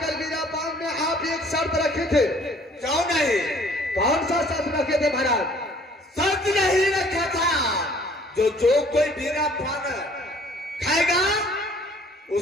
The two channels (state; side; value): normal; both; correlation 0.56